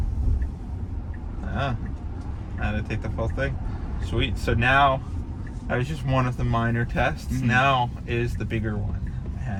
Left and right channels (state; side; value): identical; both; correlation 1.00